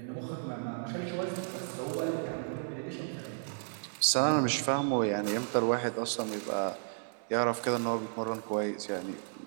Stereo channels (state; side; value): silent; left; 56 dB below the other